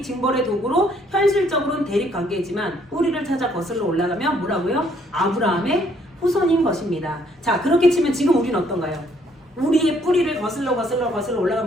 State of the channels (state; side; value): normal; both; correlation 0.66